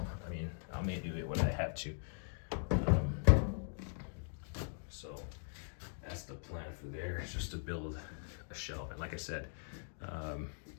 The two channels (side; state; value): right; silent; digital silence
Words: I mean, I may do it when I have to. So that's the plan for there. It's just to build a shelf, and like I said,